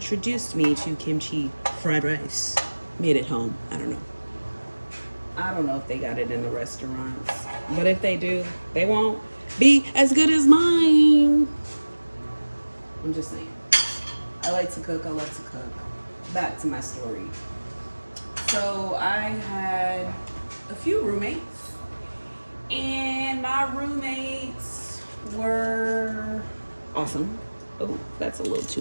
me to kimchi fried rice. Made at home. I don't know if they got it in the restaurants. But if they do, they won't be as good as mine. I'm just saying. I like to cook. I love to cook. Back to my story. So I had a few roommates, and my roommates were awesome. Oh, that's a little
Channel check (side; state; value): both; inverted; correlation -1.00